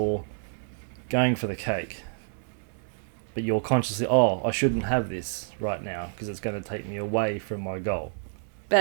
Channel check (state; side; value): silent; left; 59 dB below the other